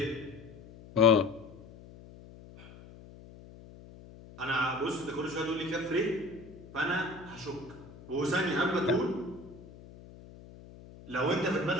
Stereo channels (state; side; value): noise; left; hum, 19 dB below the sound